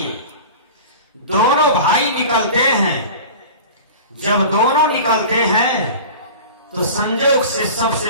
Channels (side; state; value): both; inverted; correlation -0.36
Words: दोनों भाई निकलते हैं। जब दोनों निकलते हैं तो संजोग से सबसे